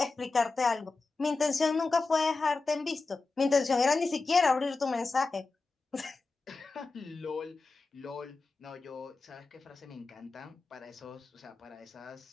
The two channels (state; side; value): quieter; right; 3.9 dB